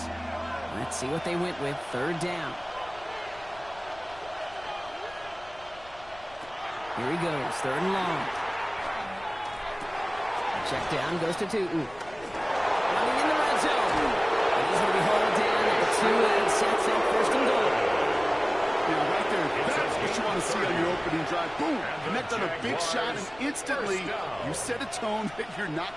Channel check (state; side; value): noise; left; rumble, 23 dB below the sound